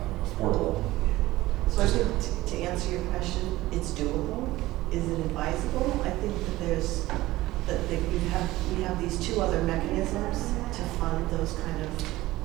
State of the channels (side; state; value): left; quieter; 17.5 dB